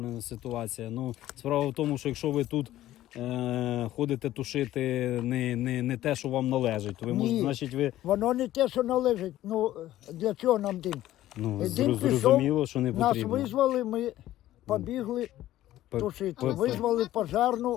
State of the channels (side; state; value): right; quieter; 14.2 dB